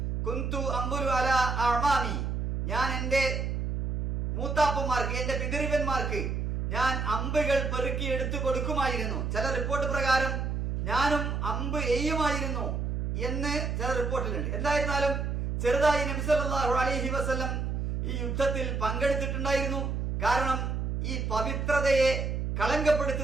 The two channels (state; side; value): noise; right; hum, 1 dB below the sound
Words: കുന്തു അംബുരു അലാ അഅമാമി, ഞാൻ എൻ്റെ മൂത്താപ്പന്മാർക്ക്, എൻ്റെ പിതൃവന്മാർക്ക് ഞാൻ അമ്പുകൾ പെറുക്കി എടുത്തു കൊടുക്കുമായിരുന്നു. ചില റിപ്പോർട്ട് പ്രകാരം ഞാനും അമ്പ് എയ്യുമായിരുന്നു എന്ന് ചില റിപ്പോർട്ടിലുണ്ട്. എന്തായിരുന്നാലും ചെറുതായി നബി സല്ലല്ലാഹു അലൈഹി വസല്ലം ഈ യുദ്ധത്തിൽ പങ്കെടുത്തിട്ടുണ്ടായിരുന്നു. കാരണം ഈ പവിത്രതയെ